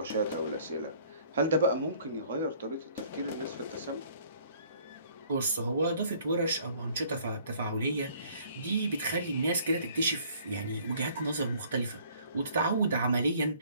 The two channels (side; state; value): both; inverted; correlation -0.58